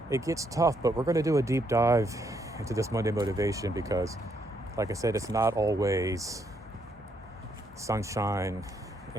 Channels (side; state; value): both; normal; correlation 0.74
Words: tough, but we're going to do a deep dive into this Monday motivation because, like I said, it's not always sunshine